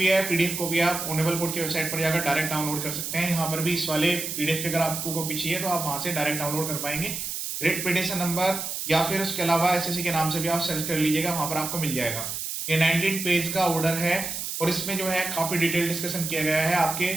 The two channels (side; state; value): right; noise; hiss, 5 dB below the sound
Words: है, पीडीएफ कॉपी, आप ऑनरेबल कोर्ट की वेबसाइट पर जाकर डायरेक्ट डाउनलोड कर सकते हैं। यहाँ पर भी इस वाले पीडीएफ की अगर आपको कॉपी चाहिए तो आप वहां से डायरेक्ट डाउनलोड कर पाएंगे। रिट पिटिशन नंबर या फिर उसके अलावा एसएससी के नाम से भी आप सर्च कर लीजिएगा, वहां पर आपको मिल जाएगा। ये 19 पेज का ऑर्डर है और इसमें जो है काफी डिटेल डिस्कशन किया गया है। आपके